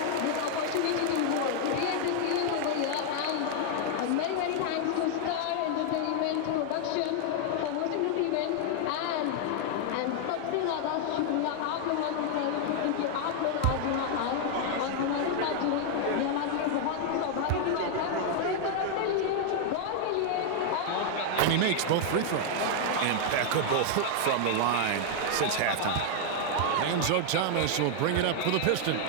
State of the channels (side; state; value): both; different; correlation 0.00